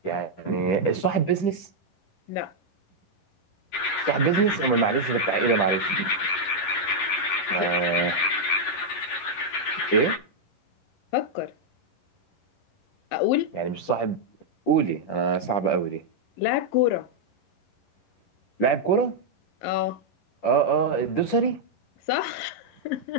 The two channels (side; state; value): right; late; 11 ms